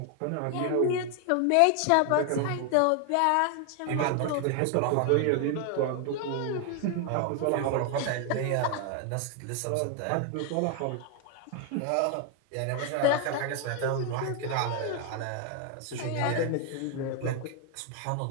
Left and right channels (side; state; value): both; different; correlation 0.00